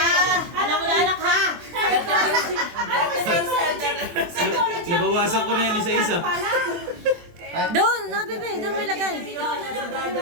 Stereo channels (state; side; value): late; left; 23 ms